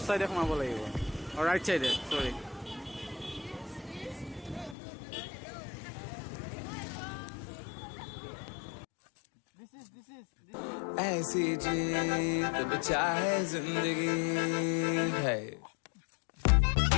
চাইডে সোমাব লাগিব, ৰাইট চাইডে চৰি। ऐसी जीत बचा है जिंदगी है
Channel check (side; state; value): right; drops out; at 4.8 s